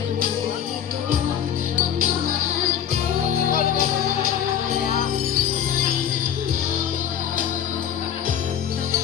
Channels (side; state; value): right; quieter; 9.4 dB